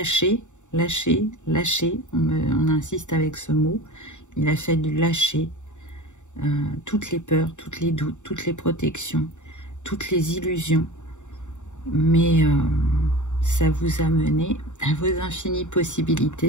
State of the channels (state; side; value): late; right; 0.84 ms